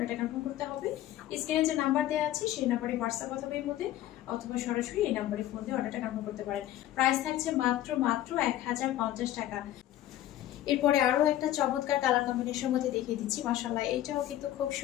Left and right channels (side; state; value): right; quieter; 13.4 dB